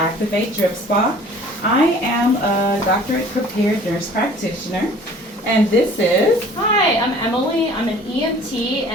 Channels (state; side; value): normal; both; correlation 0.50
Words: Drip Spa. I am a doctorate prepared nurse practitioner and this is... Hi, I'm Emily. I'm an EMT